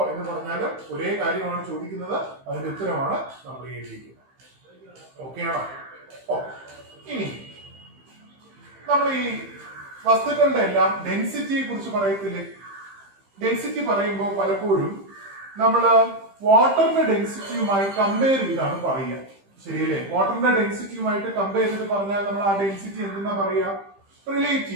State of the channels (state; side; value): late; left; 15 ms